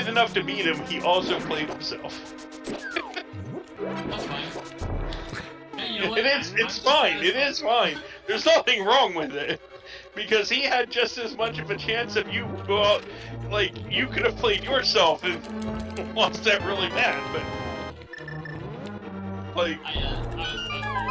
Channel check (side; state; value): both; identical; correlation 1.00